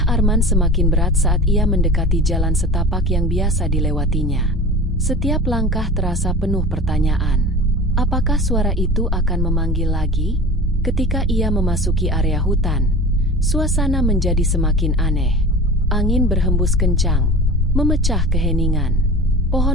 Arman semakin berat saat ia mendekati jalan setapak yang biasa dilewatinya. Setiap langkah terasa penuh pertanyaan. Apakah suara itu akan memanggil lagi? Ketika ia memasuki area hutan, suasana menjadi semakin aneh. Angin berhembus kencang, memecah keheningan.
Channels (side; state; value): both; normal; correlation 0.36